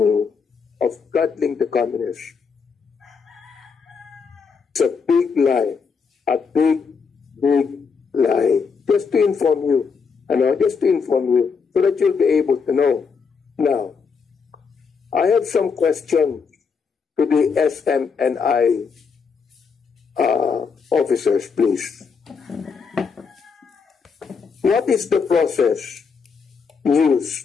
of coddling the communists, it's a big lie, a big, big lie. Just to inform you, so that you'll be able to know. Now, I have some questions to the SMNI officers, please. What is the process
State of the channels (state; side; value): quieter; right; 5.6 dB